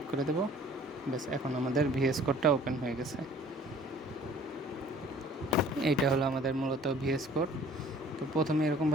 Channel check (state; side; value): normal; both; correlation 0.53